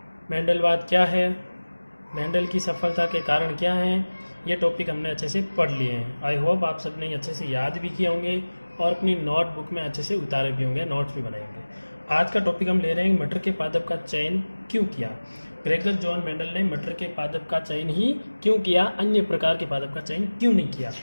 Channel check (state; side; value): inverted; both; correlation -1.00